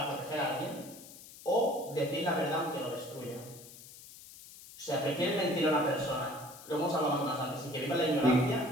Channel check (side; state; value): left; noise; hiss, 17 dB below the sound